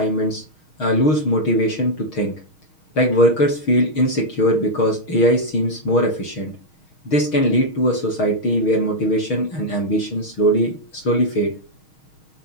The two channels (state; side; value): late; right; 6.4 ms